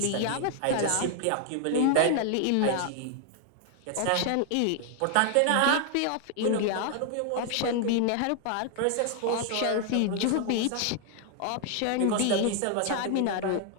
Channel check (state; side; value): different; both; correlation 0.00